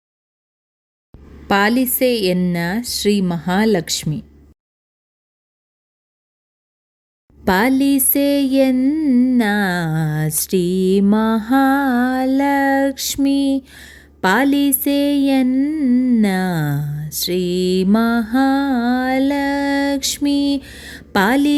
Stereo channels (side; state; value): both; identical; correlation 1.00